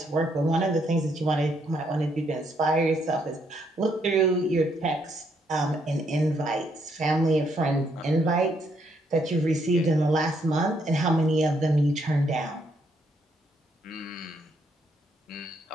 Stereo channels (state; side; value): normal; both; correlation 0.73